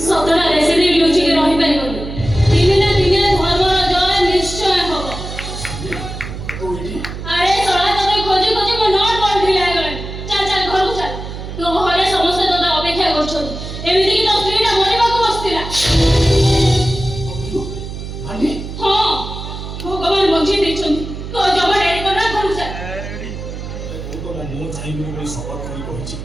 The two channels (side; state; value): right; noise; hum, 9 dB below the sound